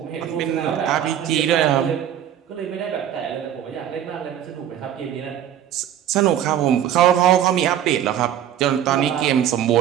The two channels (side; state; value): left; quieter; 10.4 dB